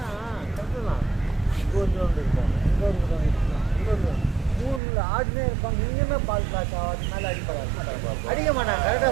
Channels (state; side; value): drops out; left; at 4.8 s